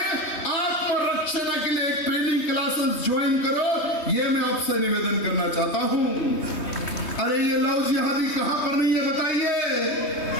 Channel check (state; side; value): late; right; 3.2 ms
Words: आत्मरक्षा के लिए एक ट्रेनिंग क्लासेस ज्वाइन करो, ये मैं आपसे निवेदन करना चाहता हूं। अरे ये लव जिहादी कहां पर नहीं है बताइए।